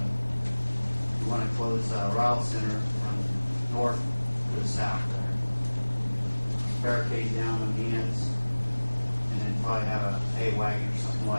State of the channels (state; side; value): inverted; both; correlation -1.00